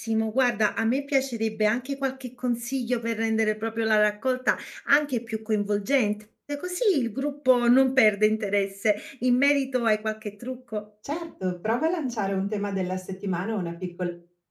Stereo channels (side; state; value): both; identical; correlation 1.00